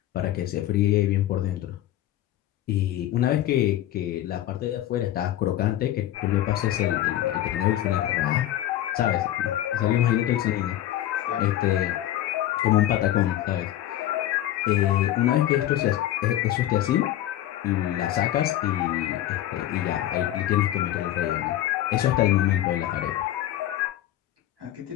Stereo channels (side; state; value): right; quieter; 13.2 dB